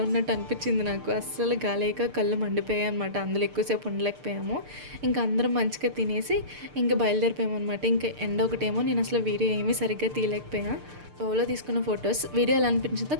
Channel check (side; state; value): left; late; 6.7 ms